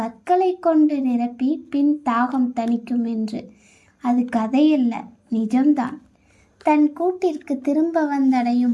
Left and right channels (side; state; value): both; identical; correlation 1.00